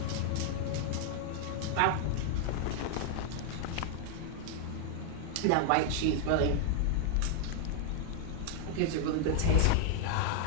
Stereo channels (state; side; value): different; both; correlation 0.00